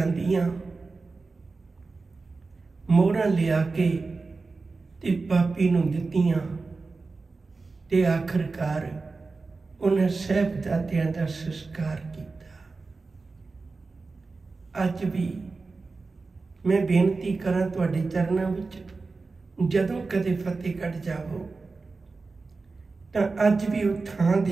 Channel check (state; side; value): quieter; left; 4.0 dB